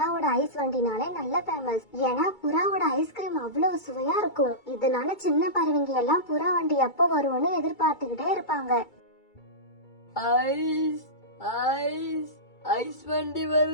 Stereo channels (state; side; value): late; right; 2.3 ms